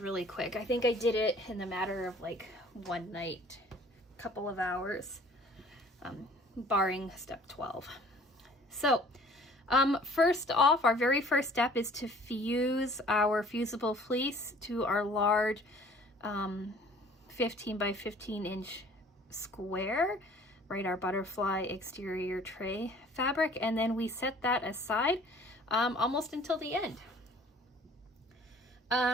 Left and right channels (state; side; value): normal; both; correlation 0.52